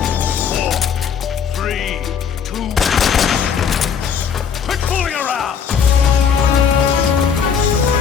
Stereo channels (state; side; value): quieter; right; 7.0 dB